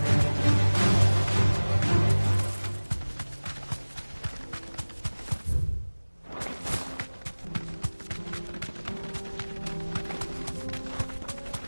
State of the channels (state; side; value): inverted; both; correlation -1.00